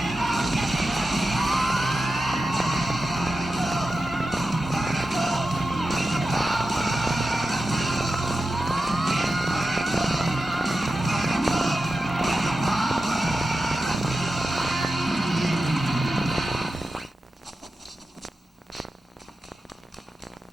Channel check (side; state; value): both; normal; correlation 0.91